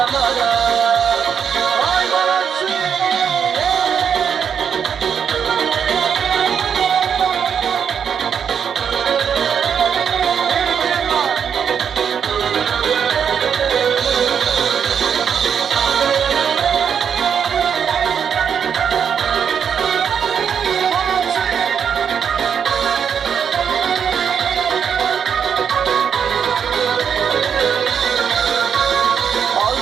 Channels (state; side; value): quieter; left; 7.5 dB